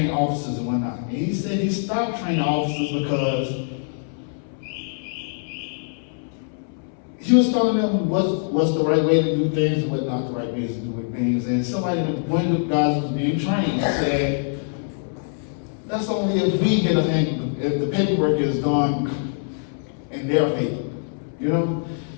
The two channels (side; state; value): right; silent; 63 dB below the other